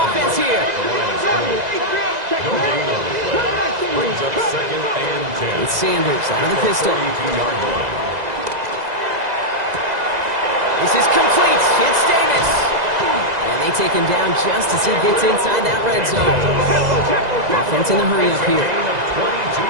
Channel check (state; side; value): late; left; 2.0 ms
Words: here. No gain on the play. Brings up 2nd and 10. It's Sanders out of the pistol. 32-yard line. This is complete. It's Davis. And they take him down just as he gets inside that red zone. Offense in the hurry-up here. Gain of 22